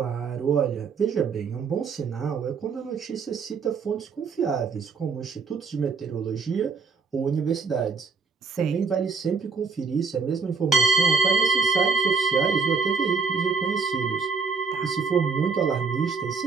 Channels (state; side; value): quieter; left; 5.0 dB